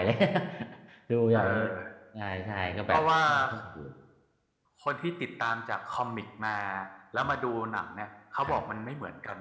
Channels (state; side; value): identical; both; correlation 1.00